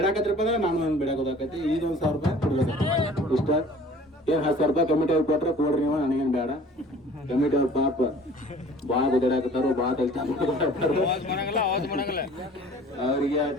ಅಂದ್ರೆ ನಾನು ನನ್ನ ಬೇಡಾಕ ಹೋದಾಕೈತಿ ಈಗ 1,000 ರೂಪಾಯಿ ಕೊಡ್ಬೇಕು ಇಷ್ಟ ಏನು 10,000 ರೂಪಾಯಿ ಕಮಿಟಿ ಅವ್ರು ಕೊಟ್ರೆ ಕೊಡ್ರಿ ನೀವು ನನಗೇನು ಬೇಡ ಕಮಿಟಿ ಅವ್ರ ಪಾಪ ಭಾಳ ಗುದ್ದಾಡಕತ್ತಾರು ಭಾಳ ಅವ್ರಿಗೆ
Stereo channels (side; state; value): both; normal; correlation 0.48